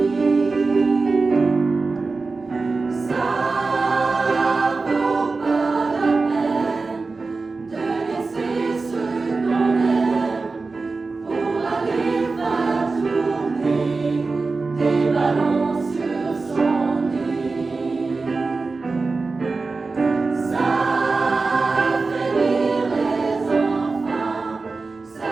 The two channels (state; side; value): quieter; left; 3.9 dB